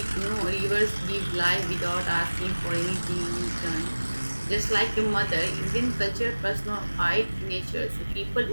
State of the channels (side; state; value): both; inverted; correlation -1.00